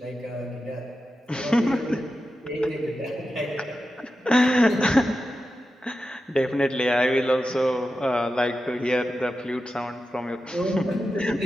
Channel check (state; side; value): normal; both; correlation 0.91